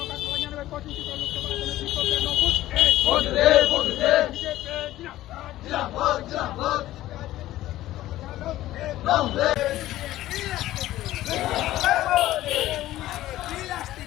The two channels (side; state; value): right; quieter; 15.0 dB